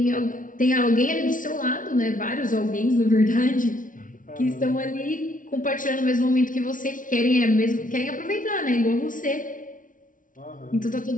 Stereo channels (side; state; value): right; late; 0.38 ms